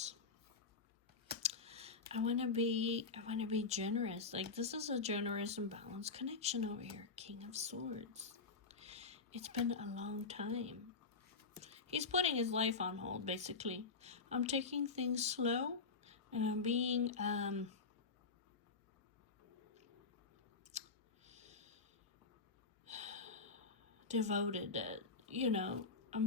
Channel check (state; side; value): quieter; right; 4.5 dB